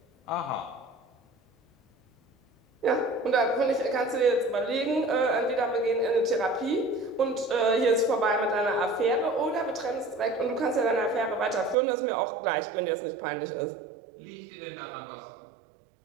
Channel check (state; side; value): drops out; left; at 11.8 s